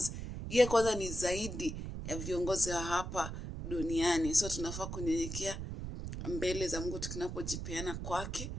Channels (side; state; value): right; noise; rumble, 6 dB below the sound